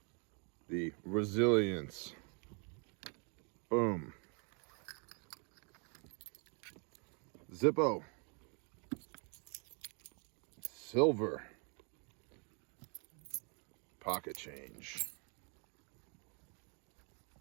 the Resilience, boom, Zippo, silver, pocket change.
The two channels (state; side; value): quieter; left; 36.6 dB